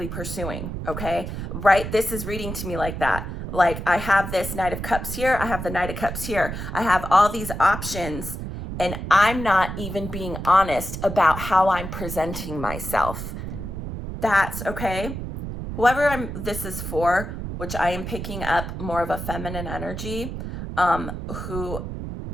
pursuing, okay? Right? This is reading to me like that. Like I have this Knight of Cups here. I have the Knight of Cups here. I have all these options and I'm not even being honest about how I'm presenting myself. That's okay. Whoever this is for, which I am picking up more of a feminine energy, who,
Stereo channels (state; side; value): noise; right; rumble, 6 dB below the sound